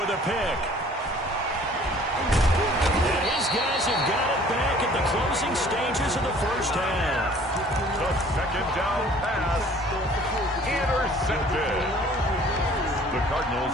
a pick. And his guys have got it back at the closing stages of the first half. The 2nd down pass intercepted. The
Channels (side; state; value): both; normal; correlation 0.53